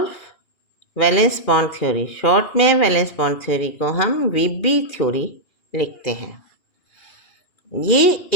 valence bond theory, short में वैलेंस बॉन्ड थ्योरी को हम VB थ्योरी लिखते हैं। ये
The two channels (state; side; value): late; right; 2.4 ms